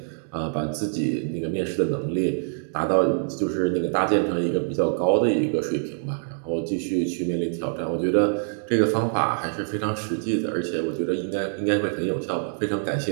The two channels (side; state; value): left; silent; 62 dB below the other